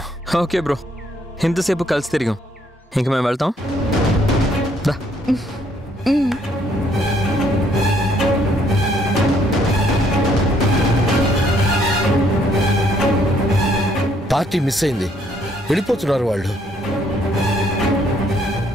ఓకే బ్రో, ఇంతసేపు కలిసి తిరిగాం, ఇంక మేము వెళ్తాం. పార్టీ మిస్ అయింది, వెళ్ళిపోతున్నారు వాళ్ళు.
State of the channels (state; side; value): normal; both; correlation 0.67